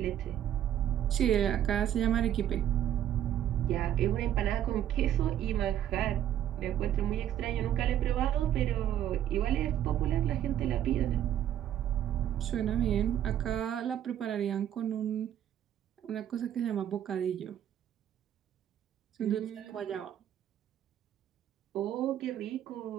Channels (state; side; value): quieter; left; 10.9 dB